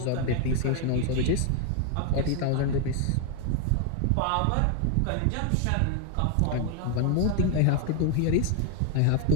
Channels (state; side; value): different; both; correlation 0.01